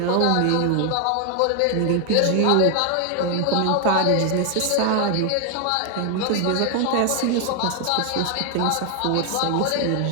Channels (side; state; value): both; different; correlation 0.00